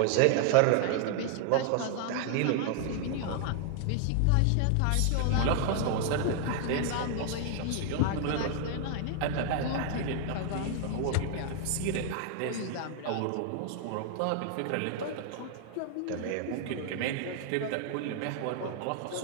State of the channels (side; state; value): both; different; correlation 0.00